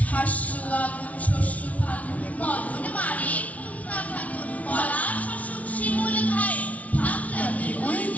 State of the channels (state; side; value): late; right; 0.068 ms